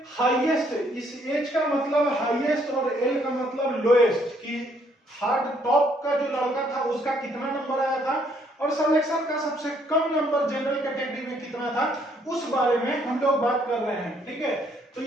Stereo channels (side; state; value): both; normal; correlation 0.67